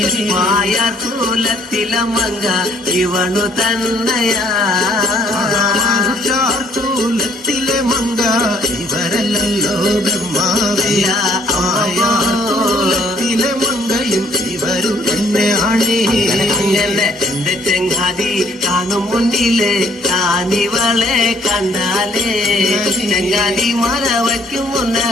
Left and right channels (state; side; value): normal; both; correlation 0.63